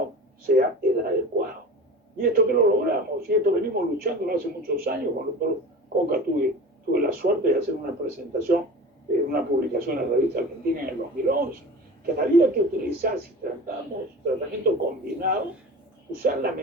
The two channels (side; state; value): both; normal; correlation 0.35